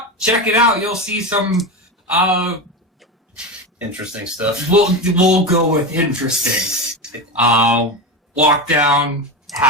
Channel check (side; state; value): both; normal; correlation 0.19